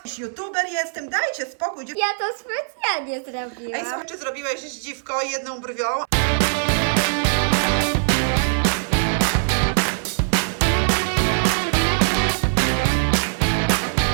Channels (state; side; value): silent; left; 64 dB below the other